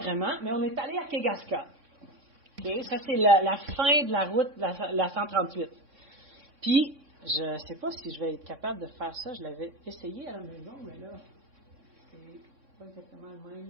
mais on est allé à Kegaska. Okay? Ça, c'est la fin de la route, la 138. Puis, je ne sais pas si je vais être capable de faire ça. Je l'avais essayé à la maison, mais là... pas exactement le même.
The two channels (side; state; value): left; late; 3.6 ms